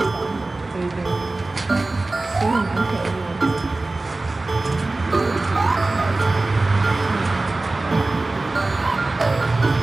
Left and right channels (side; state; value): left; quieter; 3.1 dB